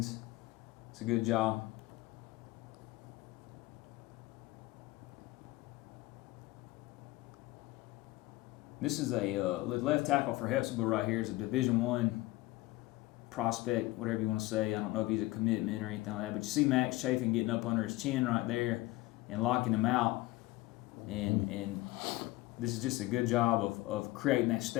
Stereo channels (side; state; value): right; quieter; 19.3 dB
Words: it's a good job. This is a left tackle for Hepzibah right here. Is a Division I prospect, whatever you want to say. I don't know if he's a commitment or anything like that, but you see Max Chafin getting up under his chin right there and locking him out, and this is just a good job of creating that